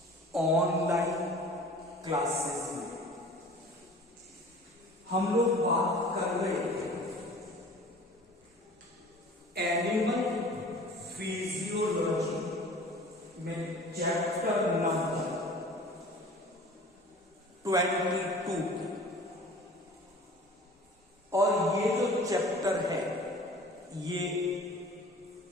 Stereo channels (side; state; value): both; normal; correlation 0.44